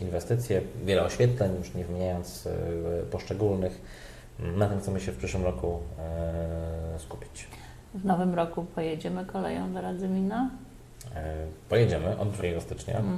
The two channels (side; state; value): both; identical; correlation 1.00